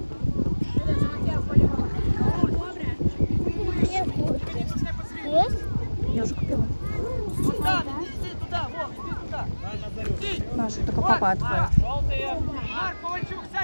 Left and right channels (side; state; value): both; inverted; correlation -1.00